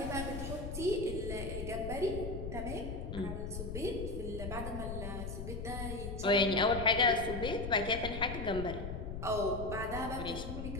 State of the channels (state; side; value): noise; left; rumble, 6 dB below the sound